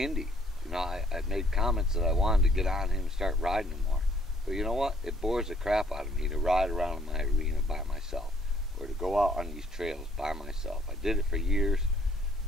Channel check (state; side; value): normal; both; correlation 0.63